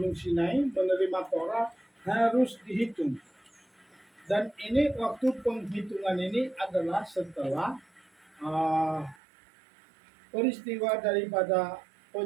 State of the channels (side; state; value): left; drops out; at 9.2 s